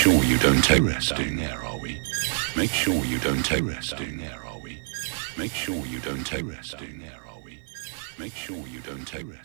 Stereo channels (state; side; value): silent; left; digital silence